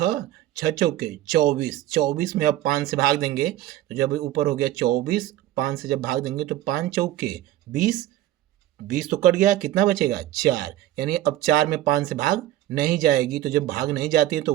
6 चौके 24, 24 में अब 5 से भाग देंगे तो जब ऊपर हो गया 24, 5 से जब भाग देंगे तो 5 चौके 20, 20 तो कट गया, कितना बचेगा 4। यानी अब 4 में 5 से भाग नहीं जाएगी, तो जब भाग नहीं जाती है तो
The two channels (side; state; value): left; quieter; 13.9 dB